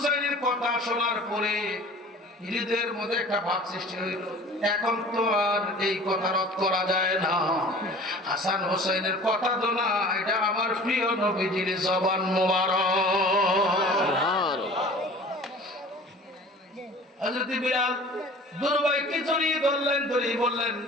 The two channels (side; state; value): both; normal; correlation 0.44